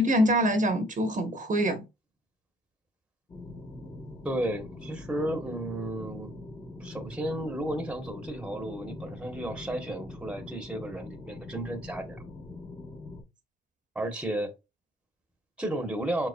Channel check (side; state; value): both; normal; correlation 0.62